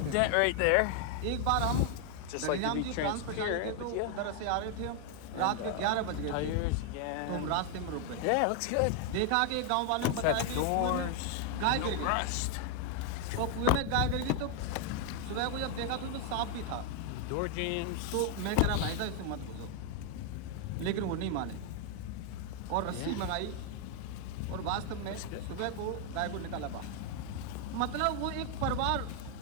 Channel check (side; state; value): both; different; correlation 0.00